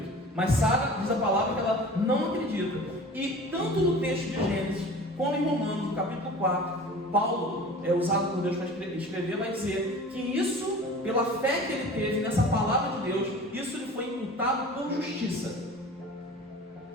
Mas Sara diz a palavra que ela não acredita. E tanto no texto de Gênesis, como em Romanos, no capítulo 4, Paulo, usado por Deus para escrever, vai dizer que isso, pela fé que ele teve nessa palavra de Deus, isso lhe foi imputado por justiça.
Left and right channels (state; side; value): normal; both; correlation 0.40